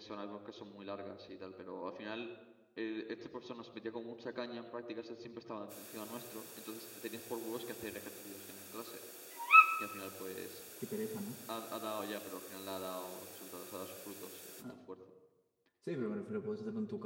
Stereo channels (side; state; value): both; identical; correlation 1.00